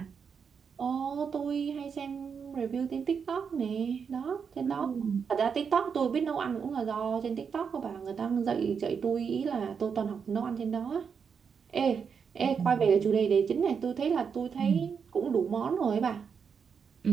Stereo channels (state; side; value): quieter; left; 6.4 dB